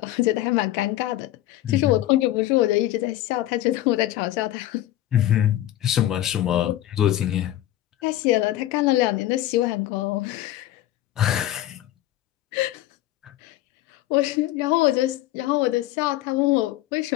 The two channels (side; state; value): right; quieter; 14.2 dB